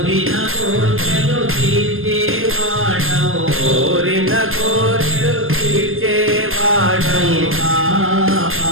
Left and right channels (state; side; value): late; left; 0.60 ms